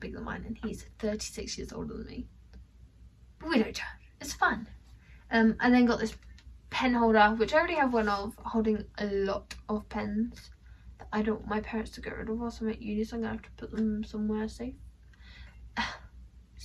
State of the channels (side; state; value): both; identical; correlation 1.00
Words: than mine, and he's 36 years older than me. But we don't judge. It's fun. And then got this pen holder, which I already have one of, holding a lot of pens that I don't want my parents to get rid of whilst I'm at uni, so I'm going to have to put them somewhere safe.